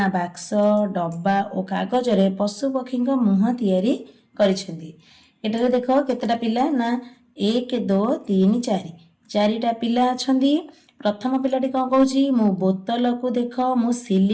बाक्स डब्बा और कागज रे पशु पक्षी मुह तैयारी करिसेंती। एटारे देख केतेटा पिला ना 1 2 3 4 चारिटा पिला अछंती। प्रथम पिलाटी कौन कहूँ मु बोतल को देख मु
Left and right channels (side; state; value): both; identical; correlation 1.00